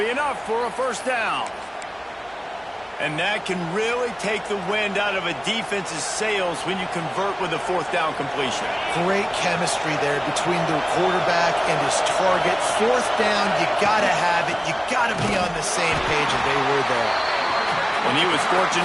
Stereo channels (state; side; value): identical; both; correlation 1.00